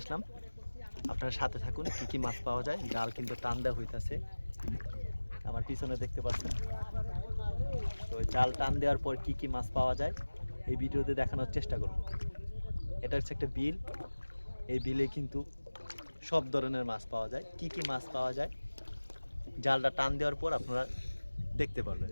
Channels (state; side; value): inverted; both; correlation -1.00